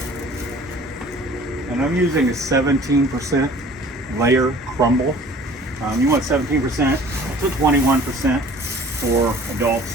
And I'm using a 17% layer crumble. You want 17% to 21% for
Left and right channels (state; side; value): normal; both; correlation 0.49